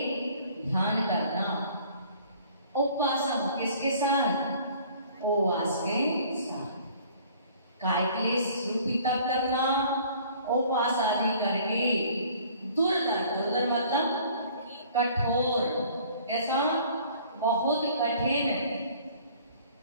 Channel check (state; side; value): inverted; both; correlation -0.53